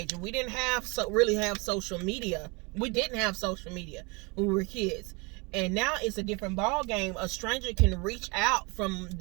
We didn't really have social media. We didn't have social media when we were kids. And now it's a different ball game. A stranger can reach out from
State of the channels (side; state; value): left; quieter; 28.9 dB